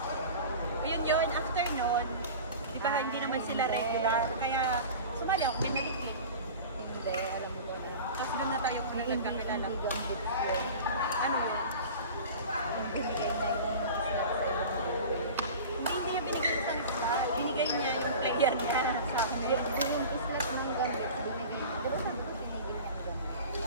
Yun, after nun, di ba hindi naman sila regular, kaya sumali ako, may Liquid. Hindi, alam mo ba na. Tapos doon na tayo kung nagkakilala. Hindi kang hits ko. Ano yun? Binigay na Hindi niya binigay sa isla. Binigay niya yung player niya sa akin. yung yung islat ng gamit. Binigay niya. Pero saan ko binigay niya ang gamit?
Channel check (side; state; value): both; inverted; correlation -0.36